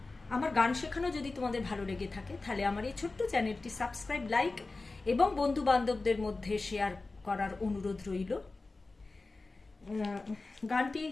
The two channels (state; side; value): quieter; right; 3.5 dB